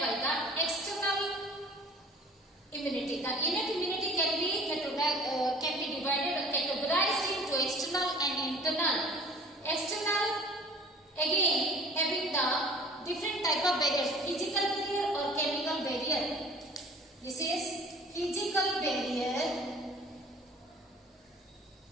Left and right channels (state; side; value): normal; both; correlation 0.49